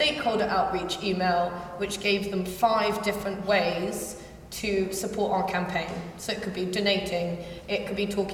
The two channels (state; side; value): identical; both; correlation 1.00